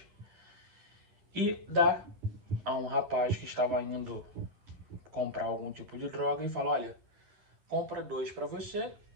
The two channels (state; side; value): late; left; 10 ms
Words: e dá a um rapaz que estava indo comprar algum tipo de droga e fala: olha, compra 2 para você